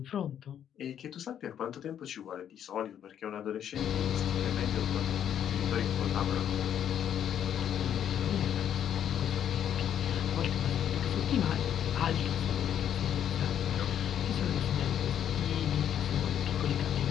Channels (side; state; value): right; quieter; 9.6 dB